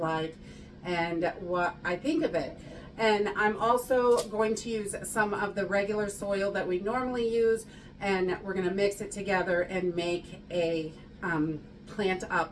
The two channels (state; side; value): identical; both; correlation 1.00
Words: and what I think of it. And I'm also going to use some of the regular soil that we normally use, and we're gonna mix it together and make a plant